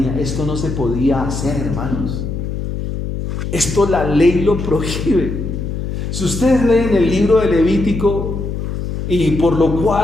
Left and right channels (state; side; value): noise; left; hum, 4 dB below the sound